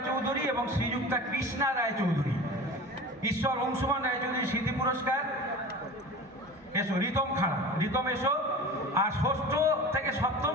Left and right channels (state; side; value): normal; both; correlation 0.35